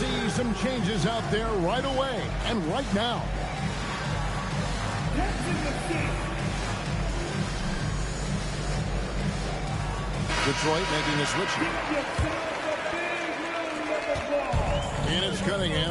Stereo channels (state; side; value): identical; both; correlation 1.00